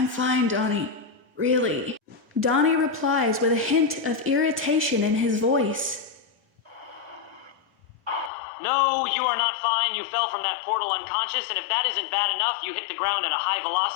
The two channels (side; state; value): right; drops out; at 8.3 s